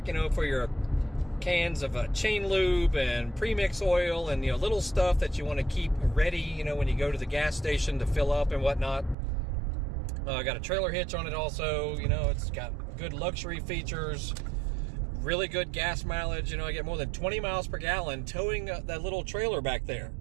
for your cans of chain lube and premix oil and, little stuff that you want to keep ready, when you go to the gas station to fill up and whatnot. I got a trailer hitch on it also. It's got good luxury features, really good gas mileage. I get more than 20 miles per gallon towing that little trailer back there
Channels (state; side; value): drops out; left; at 9.2 s